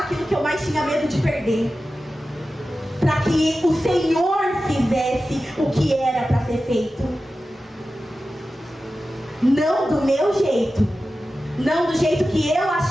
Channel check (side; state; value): both; normal; correlation 0.94